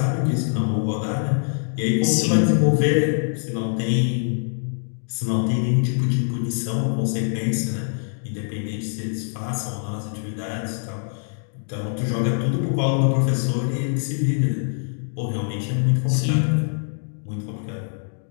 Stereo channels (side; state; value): right; silent; digital silence